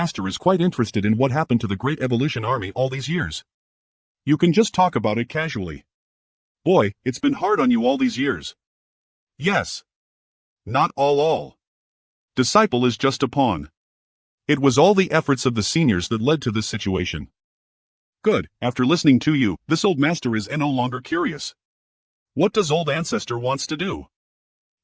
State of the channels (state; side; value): identical; both; correlation 1.00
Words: is quite interested in what happened to the Great Evolution Army all these years. You can just talk about it casually. Boy, it's been hard on you all these years. Yes. Not all. Disciple is just a pawn. It was all the efforts of the seniors that led to this situation. Good, after listening to you, this old master is no longer curious. What does old ancestor wants to do?